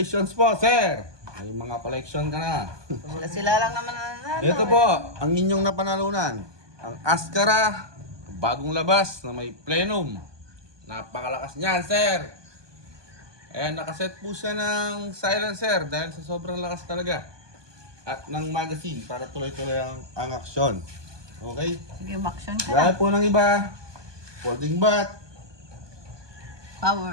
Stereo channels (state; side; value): late; left; 1.2 ms